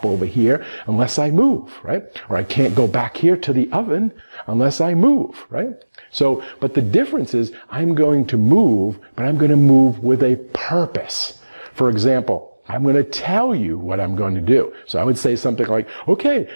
over here, unless I move, right? Or I can't go back here to the oven unless I move, right? So, but the difference is I'm going to move, but I'm going to move with a purpose. For example, I'm going to tell you what I'm going to do. So I would say something like, okay,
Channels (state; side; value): inverted; both; correlation -1.00